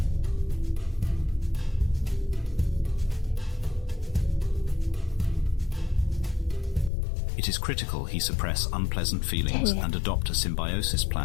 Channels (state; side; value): drops out; right; at 6.9 s